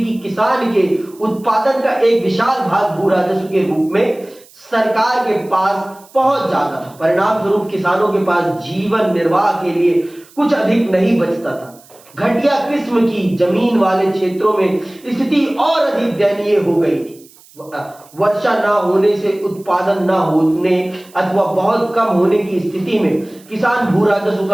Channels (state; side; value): noise; right; hiss, 26 dB below the sound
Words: कि किसान के उत्पादन का एक विशाल भाग भू राजस्व के रूप में सरकार के पास पहुंच जाता था। परिणाम स्वरूप किसानों के पास जीवन निर्वाह के लिए कुछ अधिक नहीं बचता था। घटिया किस्म की जमीन वाले क्षेत्रों में स्थिति और अधिक दयनीय हो गई थी। वर्षा ना होने से उत्पादन ना होने अथवा बहुत कम होने की स्थिति में किसान भू राजस्व